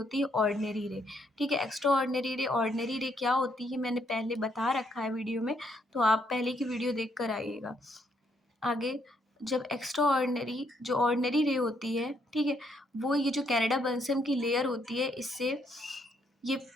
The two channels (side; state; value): both; normal; correlation 0.73